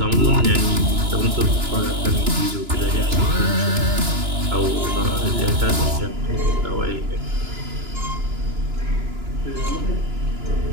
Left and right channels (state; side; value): late; left; 2.9 ms